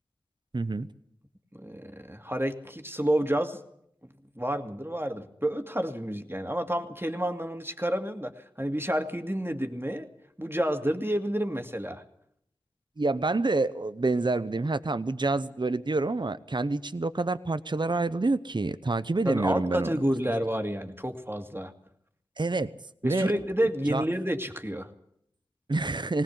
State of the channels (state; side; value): normal; both; correlation 0.85